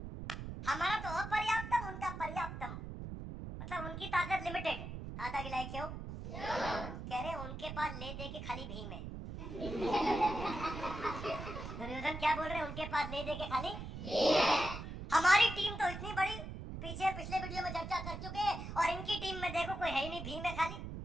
हमारा तो अपर्याप्तम, उनका पर्याप्तम, मतलब उनकी ताकत लिमिटेड। हाथ आगे लाए क्यों? कह रहे उनके पास ले दे के खाली भीम है। दुर्योधन क्या बोल रहे हैं? उनके पास ले दे के खाली हमारी टीम तो इतनी बड़ी, पीछे पिछले वीडियो में चर्चा कर चुके हैं, और इनकी टीम में देखो कोई है ही नहीं, भीम है खाली।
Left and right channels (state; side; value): noise; right; rumble, 8 dB below the sound